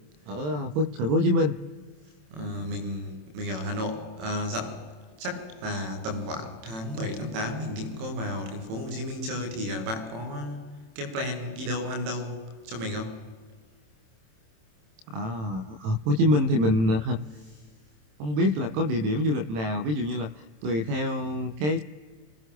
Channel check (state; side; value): late; left; 27 ms